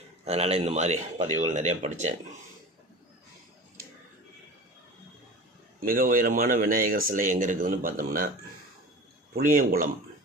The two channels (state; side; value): normal; both; correlation 0.35